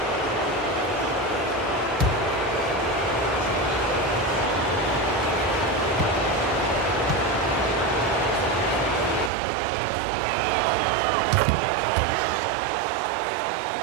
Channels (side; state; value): left; drops out; at 9.3 s